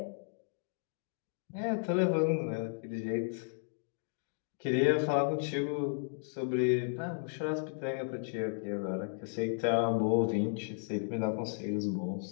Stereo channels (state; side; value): silent; right; digital silence